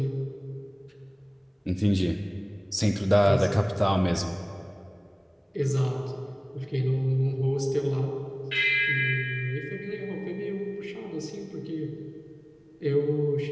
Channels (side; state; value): both; identical; correlation 1.00